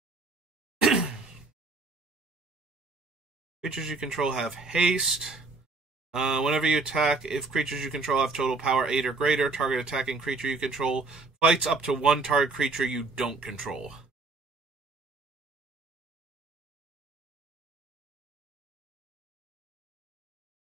Creatures you control have haste. Whenever you attack, if creatures you control have total power 8 or greater, target attacking creature you control fights up to one target creature you don't control.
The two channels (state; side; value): quieter; left; 3.7 dB